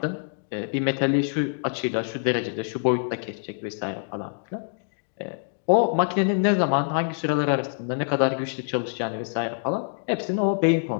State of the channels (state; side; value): silent; right; digital silence